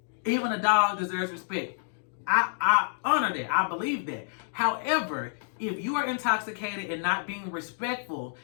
even a dog deserves respect. I honor that. I believe that. However, if you are intoxicated and not being respectful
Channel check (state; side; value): silent; right; digital silence